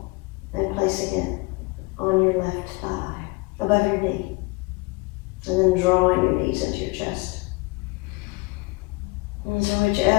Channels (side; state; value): right; quieter; 25.1 dB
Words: and placing it on your left thigh, above your knee. And then drawing your knees into your chest. And so